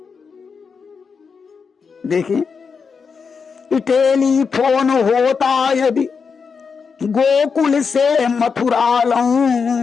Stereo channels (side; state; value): right; quieter; 5.6 dB